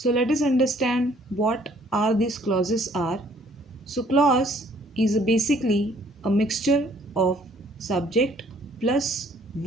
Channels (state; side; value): normal; both; correlation 0.61